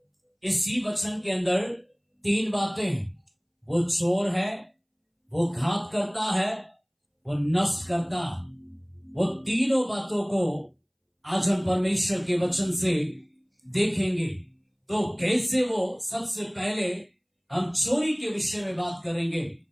इसी वचन के अंदर 3 बातें, वो चोर है, वो घात करता है, वो नष्ट करता है। वो तीनों बातों को आज हम परमेश्वर के वचन से देखेंगे। तो कैसे वो, सबसे पहले हम चोरी के विषय में बात करेंगे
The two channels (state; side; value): identical; both; correlation 1.00